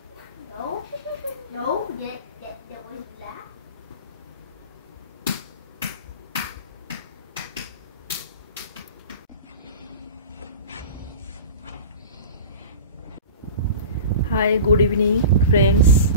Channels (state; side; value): inverted; both; correlation -0.34